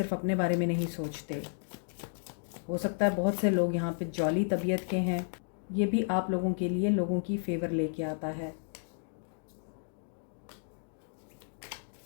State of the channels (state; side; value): silent; right; digital silence